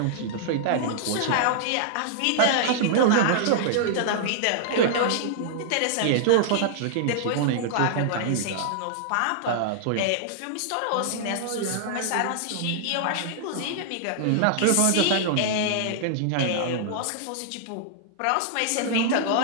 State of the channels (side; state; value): both; different; correlation -0.01